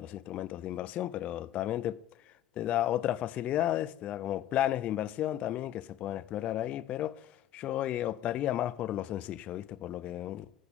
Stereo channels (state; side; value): quieter; right; 12.3 dB